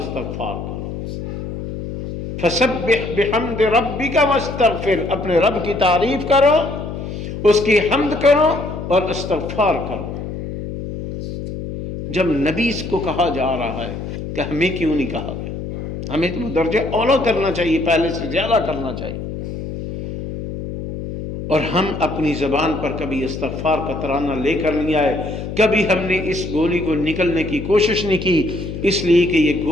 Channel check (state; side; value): noise; left; hum, 7 dB below the sound